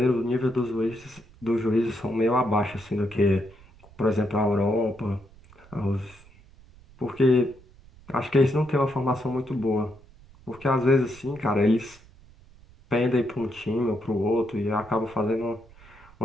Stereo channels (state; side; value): noise; right; rumble, 24 dB below the sound